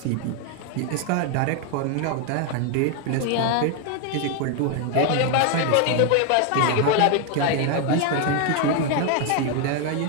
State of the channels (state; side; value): different; both; correlation 0.01